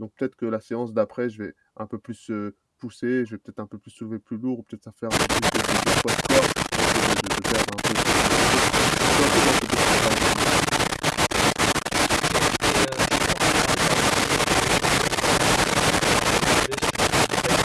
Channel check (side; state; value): both; identical; correlation 1.00